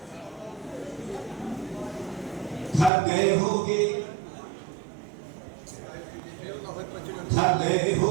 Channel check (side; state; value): left; drops out; at 2.9 s